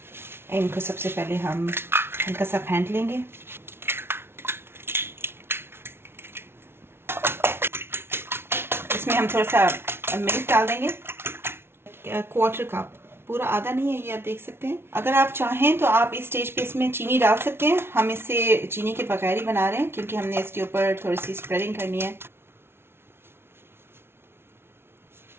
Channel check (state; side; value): late; left; 0.12 ms